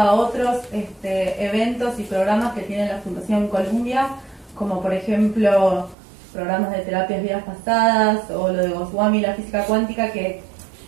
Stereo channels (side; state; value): left; drops out; at 6.0 s